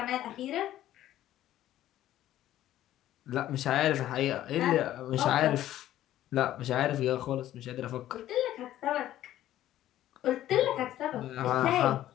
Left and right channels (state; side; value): quieter; right; 13.2 dB